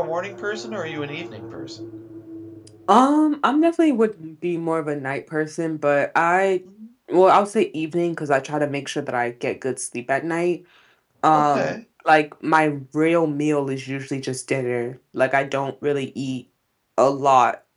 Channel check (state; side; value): identical; both; correlation 1.00